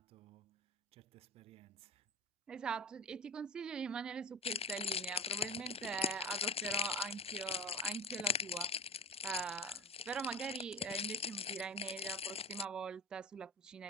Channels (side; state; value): both; normal; correlation 0.30